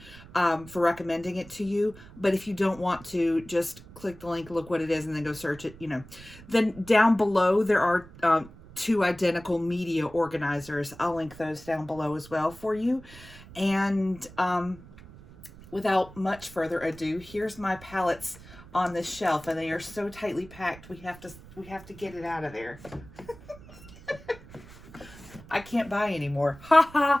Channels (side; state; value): right; noise; rumble, 19 dB below the sound